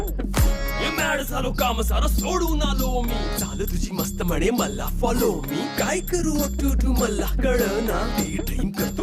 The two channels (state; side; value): identical; both; correlation 1.00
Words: झालो काम सारं सोडून आलो मी झालं तुझी मस्त म्हणे मला फॉलो मी काय करू टू मला कळना ती ड्रीम